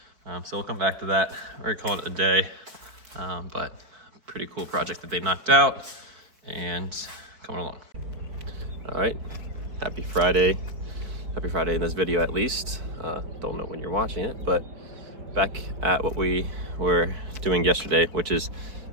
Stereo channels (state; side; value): late; left; 4.6 ms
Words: So we'll come back to that. We're gonna call it a day, but pretty cool project that they knocked out and coming along. All right, happy Friday. Happy Friday in this video at least. Don't know when you're watching it, but back at what we were doing yesterday, which is